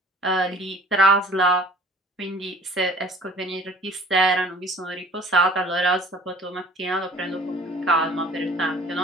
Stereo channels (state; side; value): normal; both; correlation 0.49